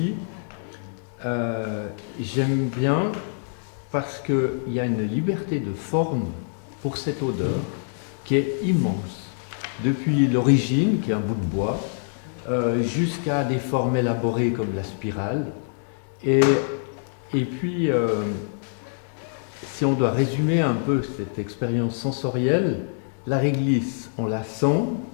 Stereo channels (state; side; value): silent; right; digital silence